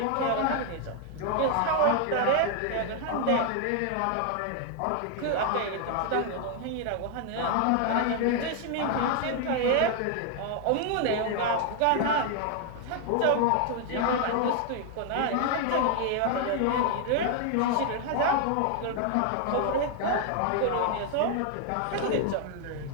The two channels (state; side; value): different; both; correlation 0.00